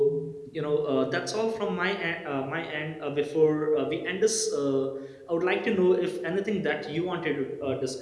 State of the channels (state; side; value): identical; both; correlation 1.00